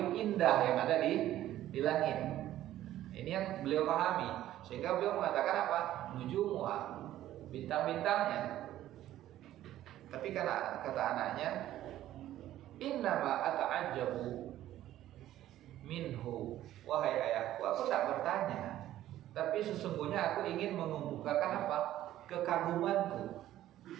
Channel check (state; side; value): quieter; left; 13.3 dB